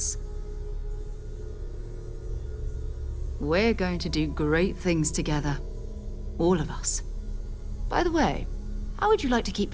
We're going to do great things together. All of us. By the way, how would you like to keep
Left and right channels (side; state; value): both; identical; correlation 1.00